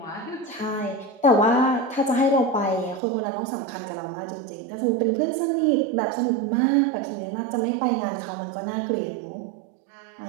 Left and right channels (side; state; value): left; drops out; at 3.0 s